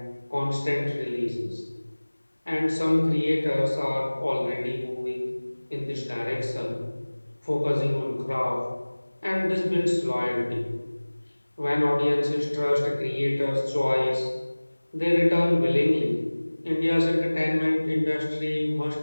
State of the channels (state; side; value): inverted; both; correlation -1.00